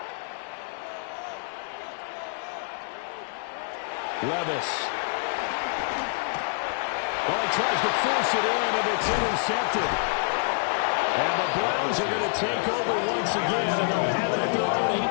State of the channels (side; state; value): right; silent; digital silence